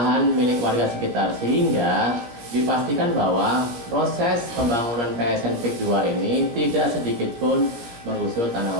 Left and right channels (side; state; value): left; late; 17 ms